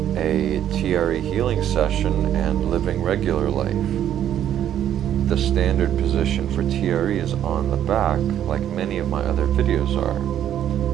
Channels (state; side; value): quieter; left; 10.6 dB